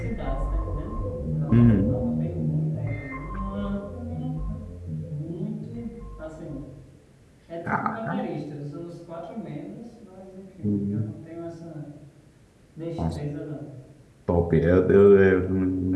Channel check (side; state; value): both; identical; correlation 1.00